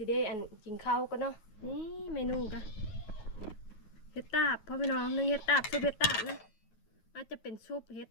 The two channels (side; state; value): right; late; 9.4 ms